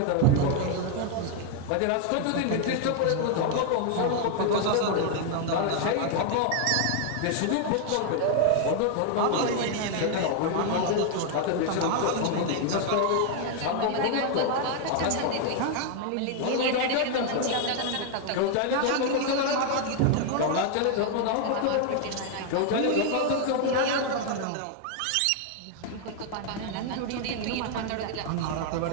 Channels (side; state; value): both; different; correlation 0.00